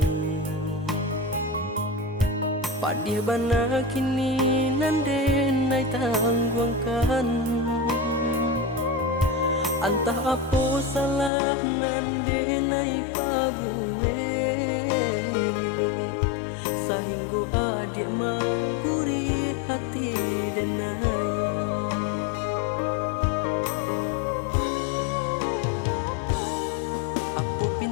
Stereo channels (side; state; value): right; drops out; at 11.3 s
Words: padih bana kini nande nai tangguangkan. Antah apa salah nande nai pabuwe, sahingga adik mangguri hati denai. Apa